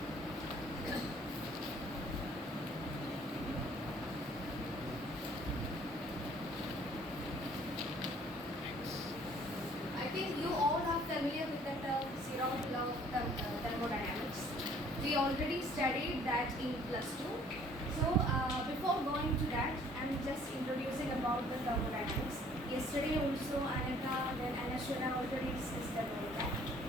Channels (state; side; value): normal; both; correlation 0.57